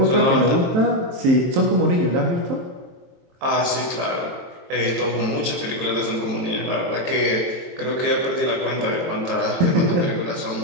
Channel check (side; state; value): left; late; 23 ms